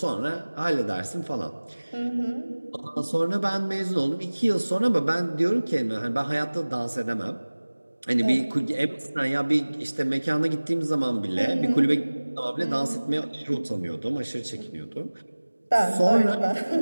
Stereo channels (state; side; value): inverted; both; correlation -1.00